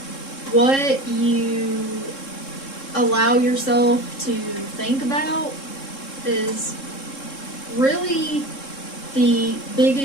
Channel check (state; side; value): late; right; 3.7 ms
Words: what you allow yourself to think about, is really the